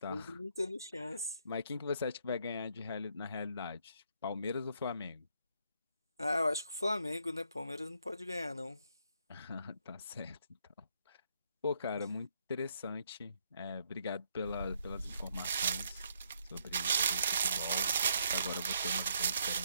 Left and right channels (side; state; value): both; inverted; correlation -0.72